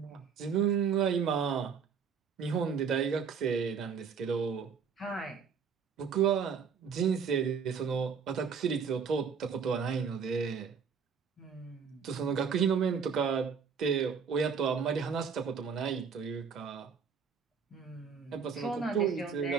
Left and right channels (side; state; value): left; quieter; 6.4 dB